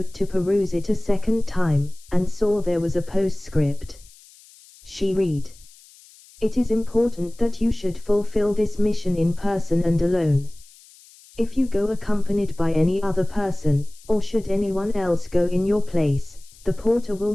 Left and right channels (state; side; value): noise; left; hiss, 25 dB below the sound